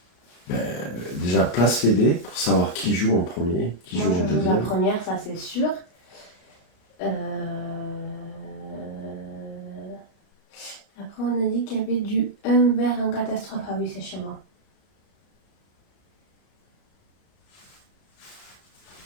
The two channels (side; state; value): right; late; 34 ms